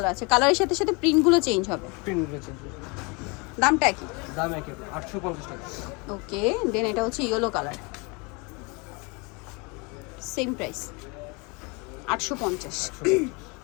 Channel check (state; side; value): quieter; right; 29.5 dB